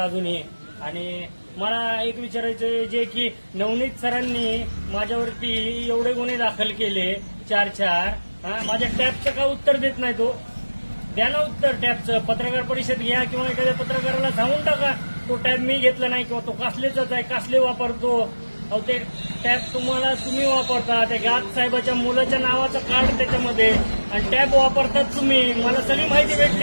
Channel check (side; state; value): both; inverted; correlation -1.00